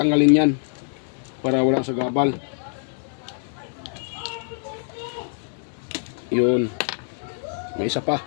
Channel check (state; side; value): silent; right; 62 dB below the other